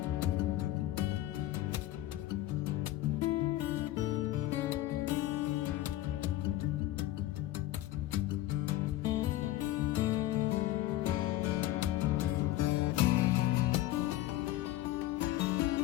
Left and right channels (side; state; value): right; quieter; 15.1 dB